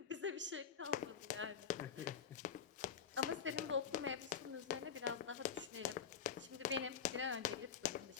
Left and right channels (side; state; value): right; quieter; 7.3 dB